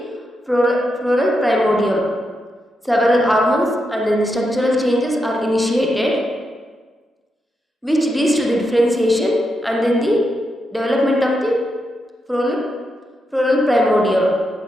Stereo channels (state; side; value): normal; both; correlation 0.84